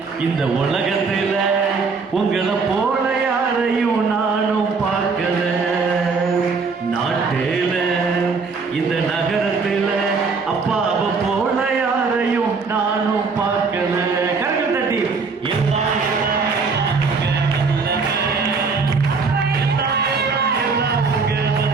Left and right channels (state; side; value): quieter; left; 4.7 dB